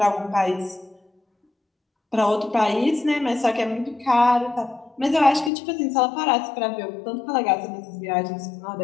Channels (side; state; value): right; drops out; at 5.5 s